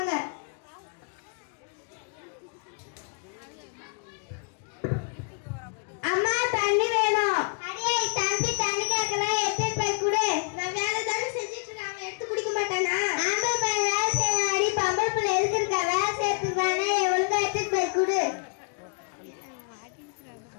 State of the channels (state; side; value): quieter; right; 38.4 dB